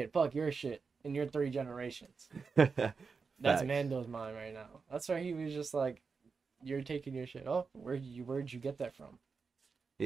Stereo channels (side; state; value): left; quieter; 5.0 dB